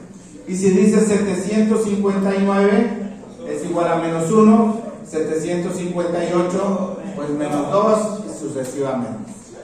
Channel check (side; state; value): both; identical; correlation 1.00